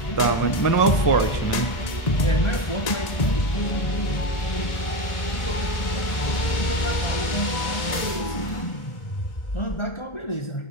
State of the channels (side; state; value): right; late; 1.4 ms